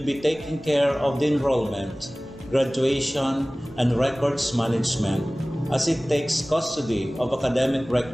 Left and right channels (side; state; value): both; normal; correlation 0.98